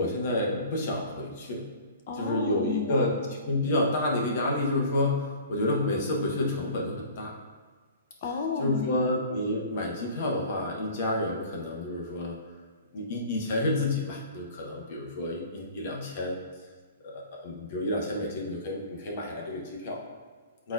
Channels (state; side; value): inverted; both; correlation -0.43